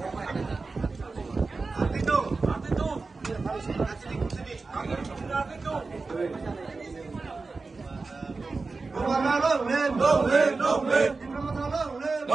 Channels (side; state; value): left; quieter; 4.0 dB